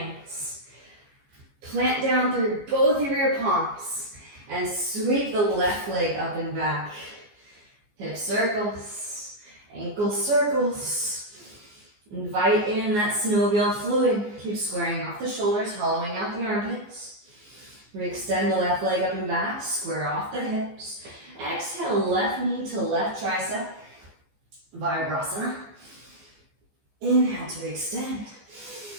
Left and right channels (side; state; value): left; late; 14 ms